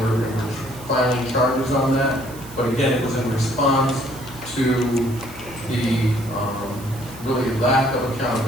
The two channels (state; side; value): noise; right; hiss, 18 dB below the sound